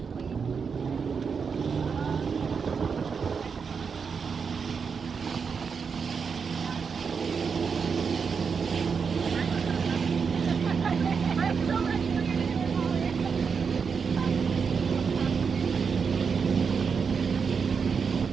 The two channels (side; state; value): left; quieter; 5.9 dB